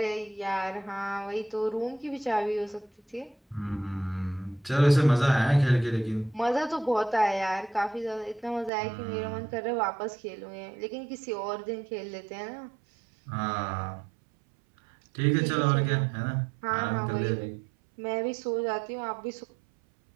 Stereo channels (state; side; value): drops out; left; at 8.7 s